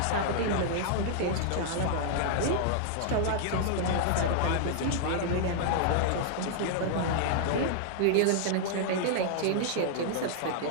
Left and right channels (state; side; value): different; both; correlation -0.01